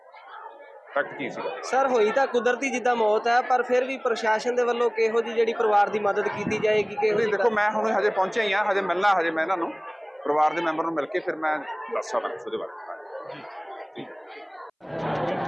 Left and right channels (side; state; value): both; identical; correlation 1.00